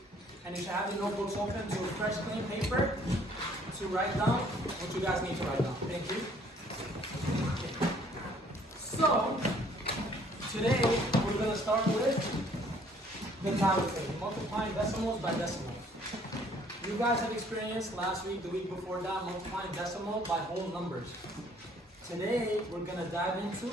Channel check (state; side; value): normal; both; correlation 0.60